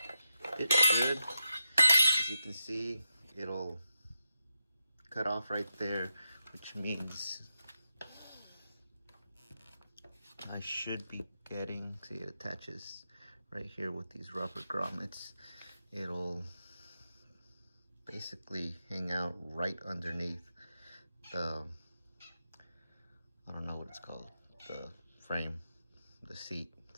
should. As you can see, it'll cut off right there, which means I should be getting, see, it attaches right here with these rubber grommets. It'll basically hang out right underneath the, I don't know what it's called, the frame, the seat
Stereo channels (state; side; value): inverted; both; correlation -0.87